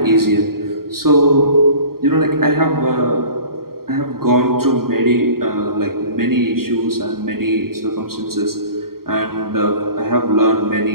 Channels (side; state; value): left; late; 0.93 ms